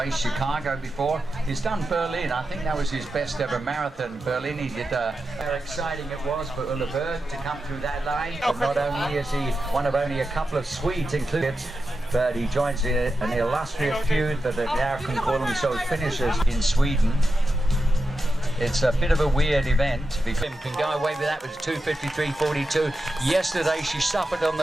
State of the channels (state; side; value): normal; both; correlation 0.90